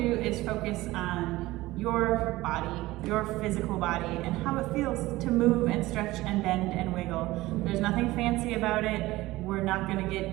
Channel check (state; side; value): quieter; left; 18.4 dB